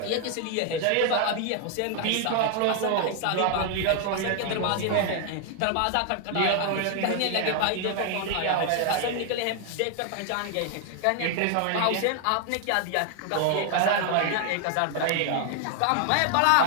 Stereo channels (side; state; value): both; different; correlation 0.00